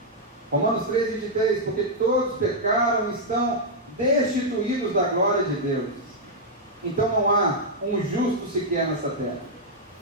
Romanos 3:23, porque todos pecaram e estão destituídos da glória de Deus. Então não há um justo sequer nessa terra.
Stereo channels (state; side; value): normal; both; correlation -0.04